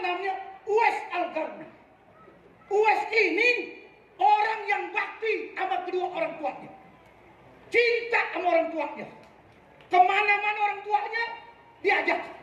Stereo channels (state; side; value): identical; both; correlation 1.00